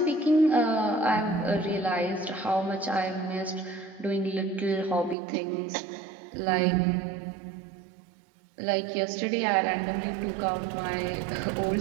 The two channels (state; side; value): drops out; left; at 5.2 s